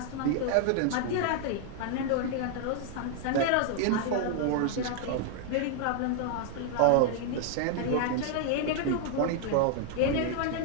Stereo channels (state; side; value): different; both; correlation 0.00